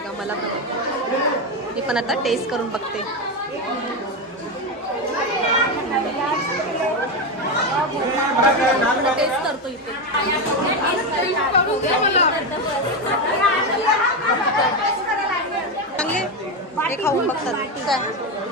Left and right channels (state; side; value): normal; both; correlation 0.12